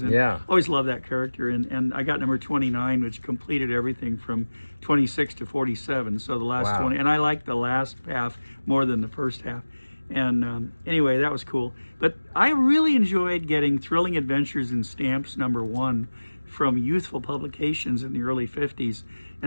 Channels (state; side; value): inverted; both; correlation -1.00